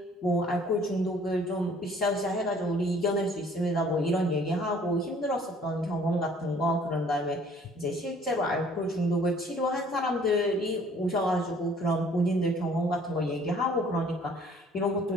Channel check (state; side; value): normal; both; correlation 0.56